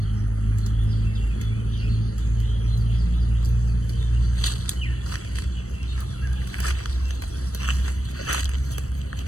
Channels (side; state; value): right; late; 0.65 ms